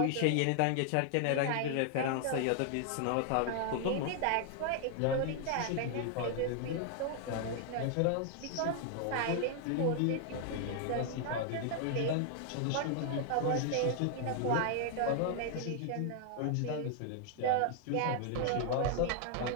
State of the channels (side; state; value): both; different; correlation 0.00